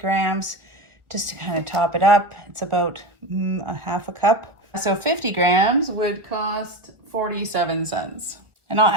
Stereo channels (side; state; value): left; late; 1.4 ms